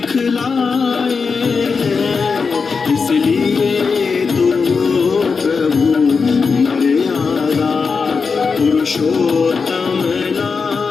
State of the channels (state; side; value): quieter; right; 5.1 dB